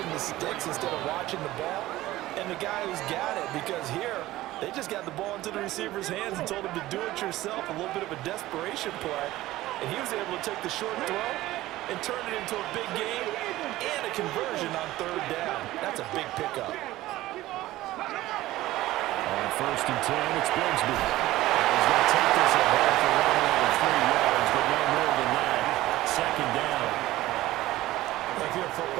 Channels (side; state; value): left; quieter; 16.5 dB